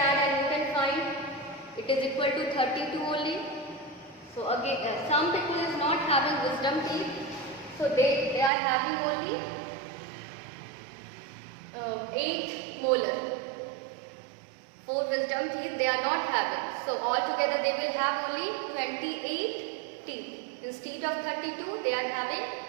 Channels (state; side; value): drops out; left; at 8.5 s